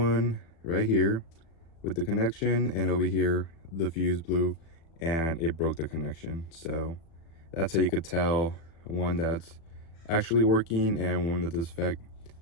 right here with the connection, and over here the fuse blew and it broke the connection. So that's how you could tell one that's actually working and one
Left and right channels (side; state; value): right; late; 36 ms